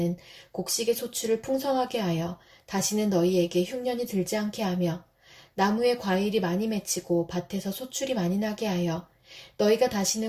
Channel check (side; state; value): both; identical; correlation 1.00